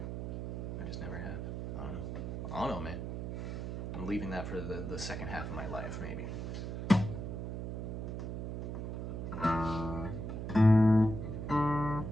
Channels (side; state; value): right; noise; hum, 4 dB below the sound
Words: I just never have. I don't know, man. I'm leaving that for the second half of my life, maybe.